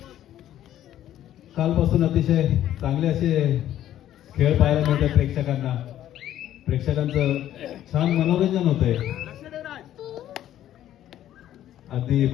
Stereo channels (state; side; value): quieter; right; 12.1 dB